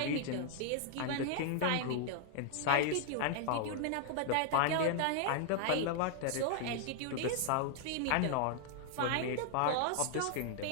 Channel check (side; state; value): both; different; correlation -0.01